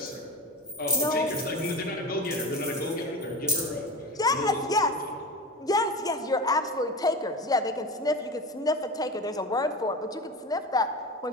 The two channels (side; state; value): both; normal; correlation 0.26